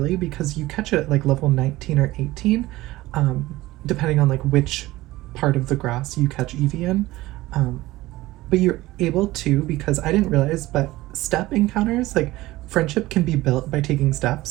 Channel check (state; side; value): quieter; left; 18.0 dB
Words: because you catch it at like level 19 or 18, depending on like which part of the grass you catch Eevee in. But you're able to, because I didn't realize, but step encounters, like friendship can be built by taking